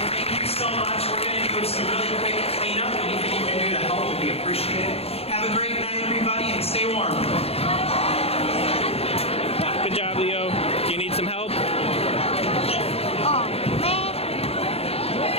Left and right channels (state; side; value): late; right; 0.29 ms